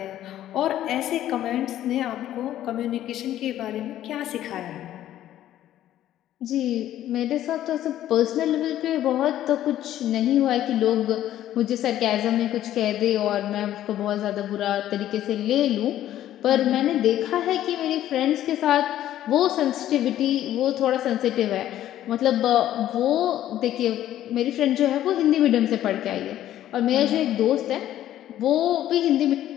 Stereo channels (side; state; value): right; quieter; 12.5 dB